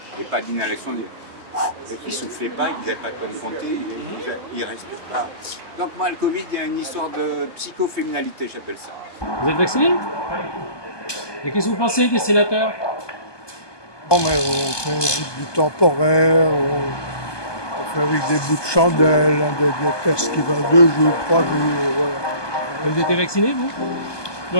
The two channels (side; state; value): right; late; 1.2 ms